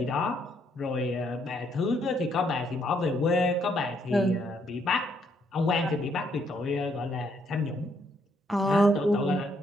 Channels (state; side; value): normal; both; correlation 0.72